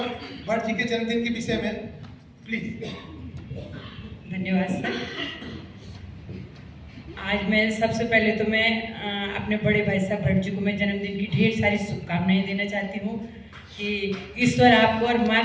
भट्ट जी के जन्मदिन के विषय में प्लीज। धन्यवाद सर। आज मैं सबसे पहले तो मैं अपने बड़े भाई साहब भट्ट जी को मैं जन्मदिन की ढेर सारी शुभकामनाएं देना चाहती हूँ कि ईश्वर आपको और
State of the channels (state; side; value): identical; both; correlation 1.00